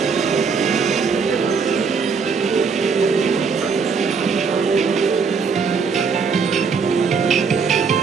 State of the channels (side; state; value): left; quieter; 5.5 dB